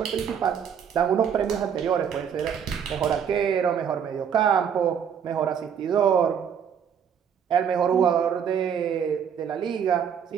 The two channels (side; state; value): left; quieter; 7.9 dB